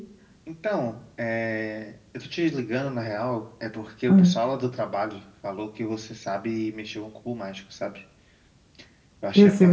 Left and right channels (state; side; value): identical; both; correlation 1.00